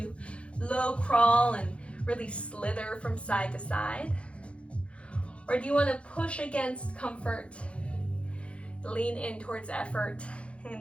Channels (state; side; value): late; right; 0.060 ms